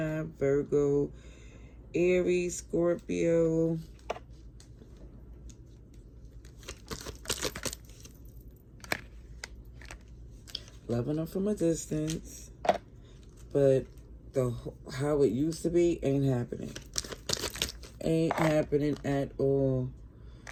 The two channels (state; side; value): identical; both; correlation 1.00